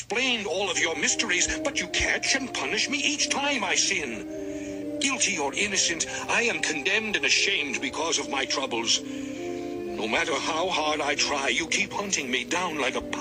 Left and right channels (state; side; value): identical; both; correlation 1.00